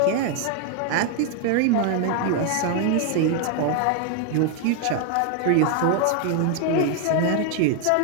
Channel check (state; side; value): different; both; correlation 0.01